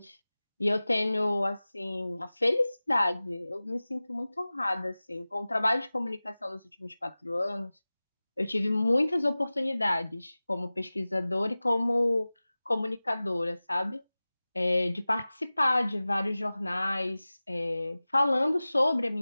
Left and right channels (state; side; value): inverted; both; correlation -0.98